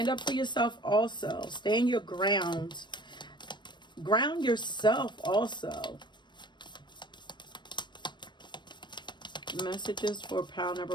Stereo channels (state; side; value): late; right; 0.22 ms